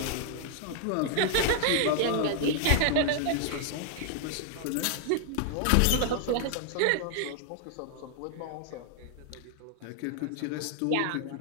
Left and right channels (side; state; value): both; different; correlation 0.00